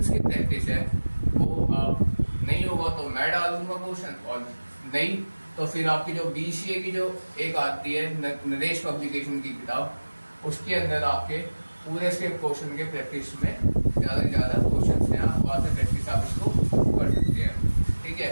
की प्रैक्टिस है वो आप नहीं होगा तो मैं डाल दूंगा क्वेश्चन, और नहीं तो फिर आपकी जो बीसीए की जो एक आती है नरेश पब्लिकेशन की किताब, उसके अंदर आपके पूरे से क्वेश्चन के प्रैक्टिस में ज़्यादा से ज़्यादा क्वेश्चन हैं, आप वहाँ से प्रैक्टिस आप इसको कर सकते हैं, ठीक है।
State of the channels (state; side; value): inverted; both; correlation -1.00